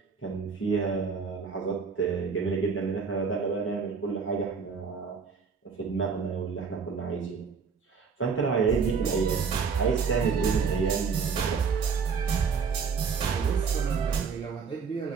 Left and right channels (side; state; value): left; quieter; 5.6 dB